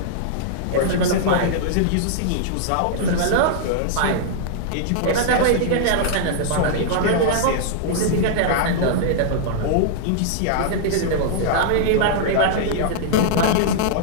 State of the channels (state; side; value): different; both; correlation -0.01